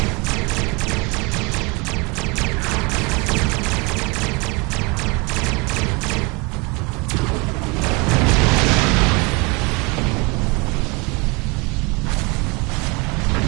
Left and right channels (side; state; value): left; quieter; 28.4 dB